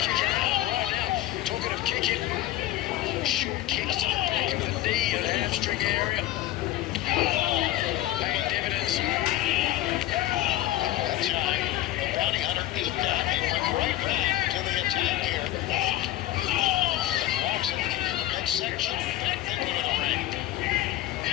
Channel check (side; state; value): right; quieter; 15.0 dB